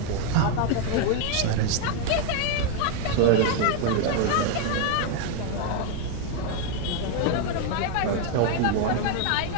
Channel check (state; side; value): different; both; correlation 0.01